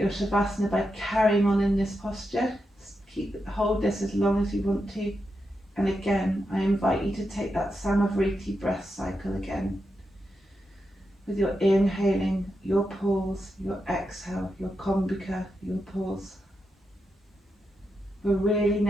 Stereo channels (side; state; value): both; normal; correlation 0.86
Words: Shavasana by carrying on in this posture. Hold this as long as you want to. And again, I invite you to take that Samavriti breath cycle again. With your inhaling, your pause, your exhale, your Kumbhaka, your pause. We're really